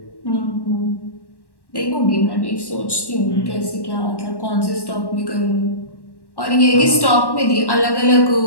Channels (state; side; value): late; right; 1.1 ms